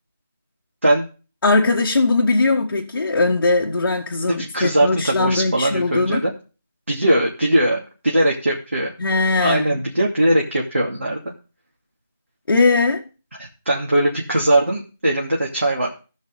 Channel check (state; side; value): inverted; both; correlation -0.78